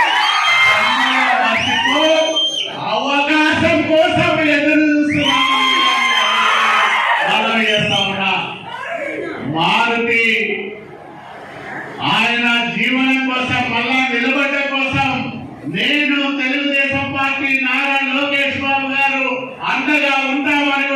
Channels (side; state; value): both; identical; correlation 1.00